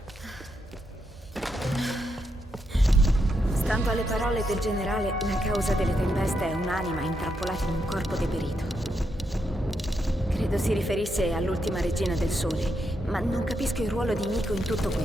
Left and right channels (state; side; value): normal; both; correlation 0.81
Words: Stando alle parole del generale, la causa delle tempeste è un'anima intrappolata in un corpo deperito. Credo si riferisse all'ultima regina del sole, ma non capisco il ruolo di Himiko in tutto